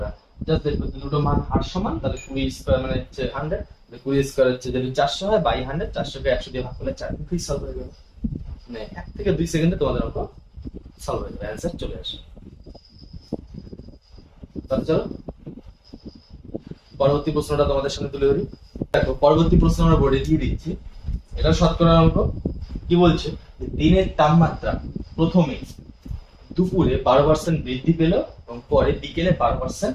না, জাস্ট দেখবে দুটো মান হার সমান, তাহলে 20² মানে হচ্ছে 100, 20² হচ্ছে যদি 400 হয়, বাই 100, 400কে 100 দিয়ে ভাগ করলে 4, মুখেই সলভ হয়ে যাবে। মানে 1 থেকে 2 সেকেন্ডে তোমাদের অঙ্ক সলভ হয়ে যাবে, অ্যান্সার চলে আসে। তাহলে চলো পরবর্তী প্রশ্নটা তোমাদের সামনে তুলে ধরি। দেখো পরবর্তী প্রশ্ন আমরা বোর্ডে দিয়ে দিচ্ছি, এটা শতকরার অঙ্ক। কি বলছে? দিনের তাপমাত্রা প্রথমে দুপুরে 12% বৃদ্ধি পেল এবং পরে বিকেলে 12%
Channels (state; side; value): identical; both; correlation 1.00